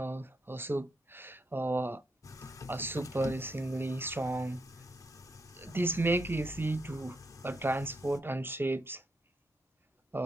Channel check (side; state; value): both; normal; correlation 0.80